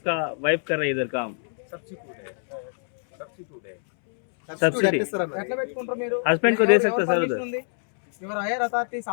वाइफ कर रही है इधर काम. सब्सिडी ఎట్లా పెట్టుకుంటారు మీరు? हस्बैंड को दे सकते सर उधर. ఎవరు higher authorities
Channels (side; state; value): right; silent; 62 dB below the other